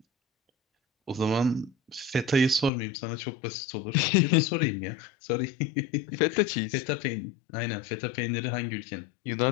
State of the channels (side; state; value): right; drops out; at 2.7 s